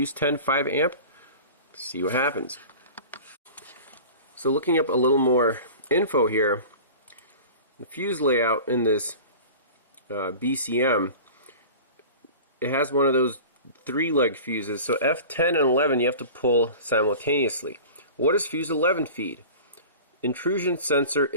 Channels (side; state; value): both; inverted; correlation -0.37